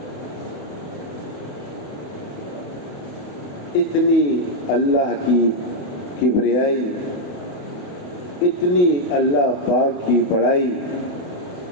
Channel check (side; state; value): right; late; 28 ms